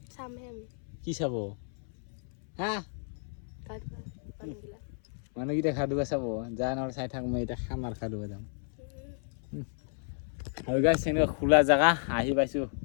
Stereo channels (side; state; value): right; silent; 56 dB below the other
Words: কি চাব হা মানুহকেইটা খাদুবা চাব যা নহ'লে চাই থাক মই এতিয়া খাম আৰু খাদুবা যাম আৰু গাইছ এনেকুৱা খোলা জেগা আহি পাইছোঁ